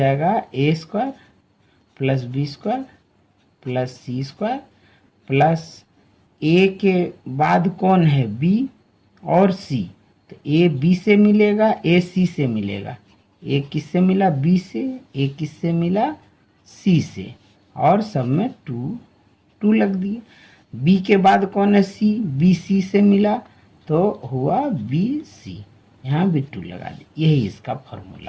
A square plus B square plus C square plus A के बाद कौन है बी और सी, तो ए बी से मिलेगा ए सी से मिलेगा, ए किससे मिला बी से, ए किससे मिला सी से, और सब में 2 लग दिए। बी के बाद कौन है सी, बी सी से मिला तो हुआ बी सी, यहाँ भी 2 लगा दी। यही इसका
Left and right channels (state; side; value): identical; both; correlation 1.00